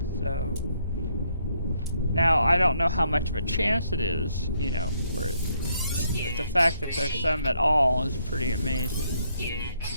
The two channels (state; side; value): inverted; both; correlation -0.73